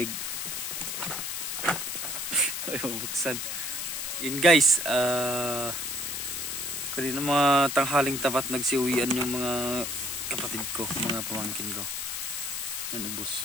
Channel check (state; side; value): noise; left; hiss, 4 dB below the sound